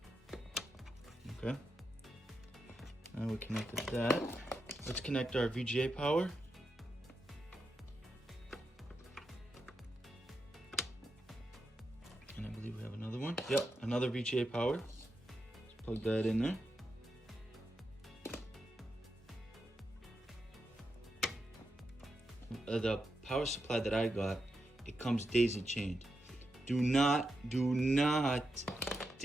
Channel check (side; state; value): both; normal; correlation 0.86